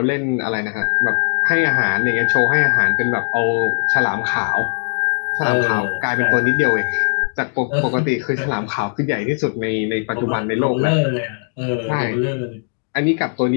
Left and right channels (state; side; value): silent; right; digital silence